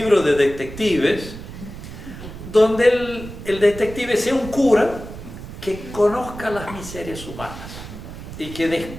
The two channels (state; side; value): noise; right; rumble, 12 dB below the sound